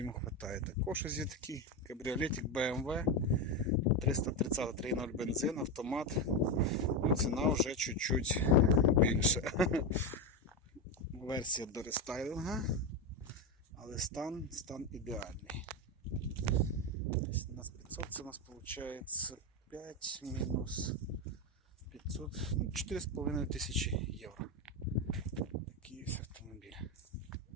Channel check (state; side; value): normal; both; correlation 0.12